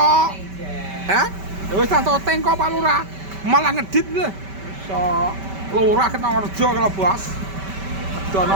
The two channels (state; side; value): late; left; 5.2 ms